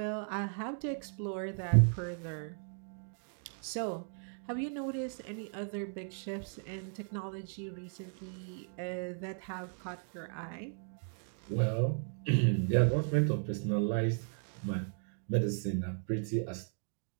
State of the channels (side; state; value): left; silent; 54 dB below the other